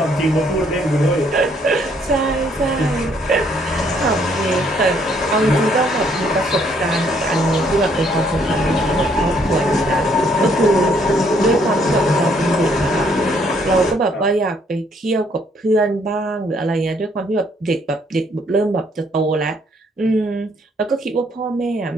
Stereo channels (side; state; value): both; normal; correlation 0.67